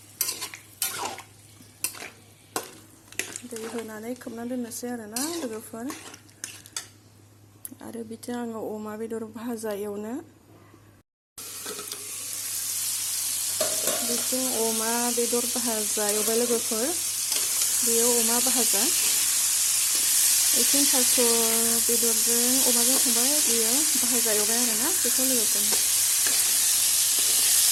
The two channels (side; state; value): both; identical; correlation 1.00